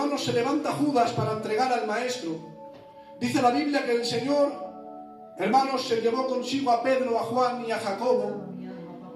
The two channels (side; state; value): both; identical; correlation 1.00